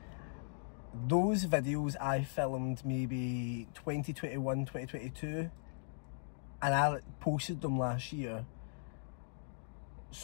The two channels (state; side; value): silent; right; digital silence